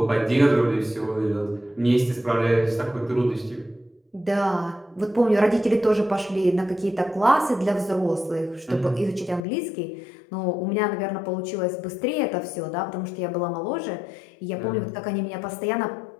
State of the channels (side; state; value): right; drops out; at 9.4 s